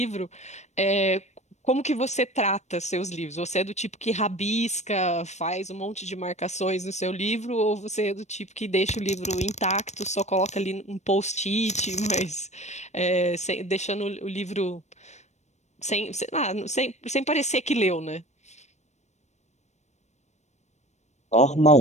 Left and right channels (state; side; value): late; right; 0.33 ms